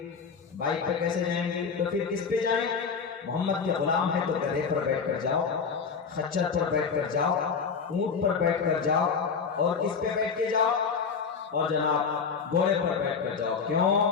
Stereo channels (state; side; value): quieter; right; 5.8 dB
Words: بائک پہ کیسے جائیں گے؟ تو پھر کس پہ جائیں؟ محمد کے غلام ہے تو گدھے پر بیٹھ کر جاؤ، خچر پر بیٹھ کر جاؤ، اونٹ پر بیٹھ کر جاؤ، اور کس پہ بیٹھ کے جاؤ؟ اور جناب گھوڑے پر بیٹھ کر جاؤ۔ کیوں؟